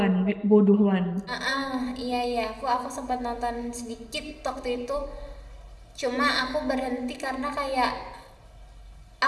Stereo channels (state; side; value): identical; both; correlation 1.00